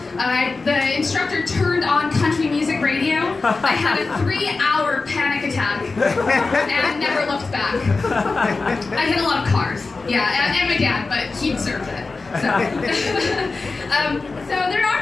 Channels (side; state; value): right; quieter; 3.9 dB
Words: The instructor turned on country music radio. I had a 3-hour panic attack and never looked back. I hit a lot of cars, yeah, and my dad, but he deserved it. So there